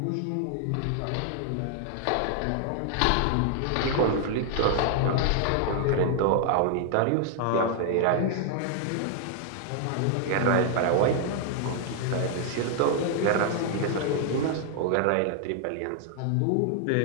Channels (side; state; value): both; different; correlation 0.00